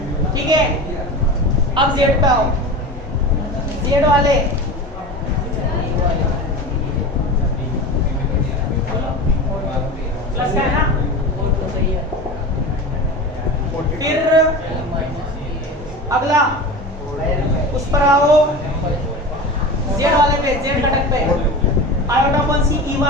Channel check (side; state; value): both; normal; correlation 0.30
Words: ठीक है। अब Z पे आओ, Z वाले प्लस का है ना, फिर अगला उस पर आओ, Z वाले पे, Z घटक पे आयोटा अपॉन सी